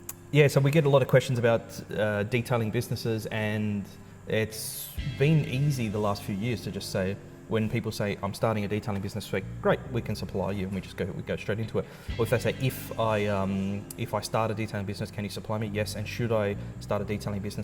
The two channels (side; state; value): both; identical; correlation 1.00